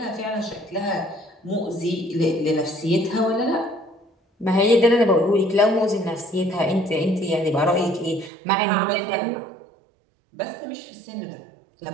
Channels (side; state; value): left; drops out; at 8.3 s